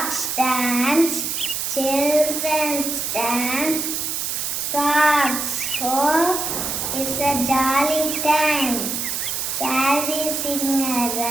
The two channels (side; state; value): right; noise; hiss, 2 dB below the sound